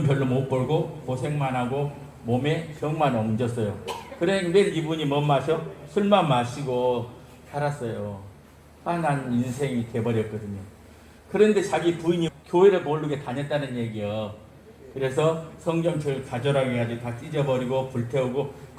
별로 못 벌고 고생만 하고 몸에 병만 옮겼어요. 그래 매일 이분이 뭐 마셔? 술만 마시고 살았어요. 화난 인생이 돼버렸거든요. 그런데 자기 부인이 교회를 모르게 다녔다는 얘기요. 그래서 성경책을 가져라고 해가지고 다 찢어버리고 불태우고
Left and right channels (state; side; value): identical; both; correlation 1.00